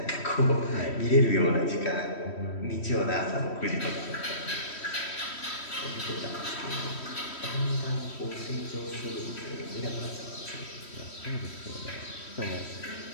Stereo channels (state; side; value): late; right; 3.1 ms